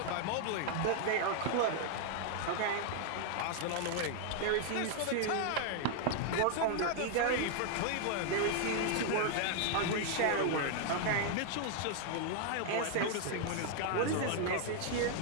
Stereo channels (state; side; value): different; both; correlation 0.00